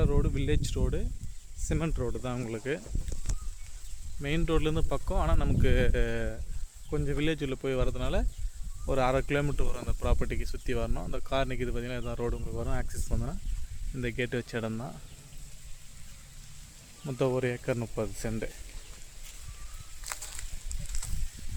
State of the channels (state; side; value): identical; both; correlation 1.00